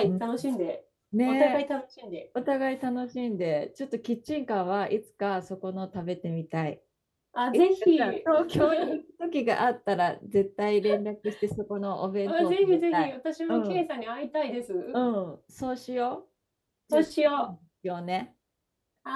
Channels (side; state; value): both; identical; correlation 1.00